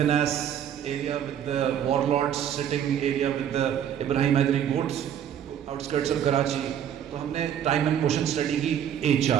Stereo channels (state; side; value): quieter; left; 9.6 dB